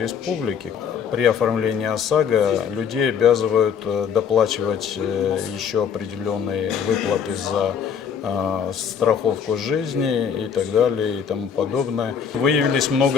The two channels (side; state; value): right; quieter; 7.3 dB